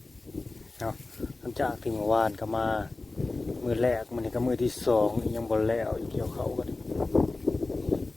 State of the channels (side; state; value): right; quieter; 3.3 dB